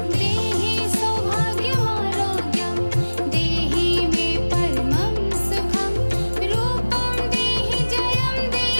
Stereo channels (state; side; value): inverted; both; correlation -1.00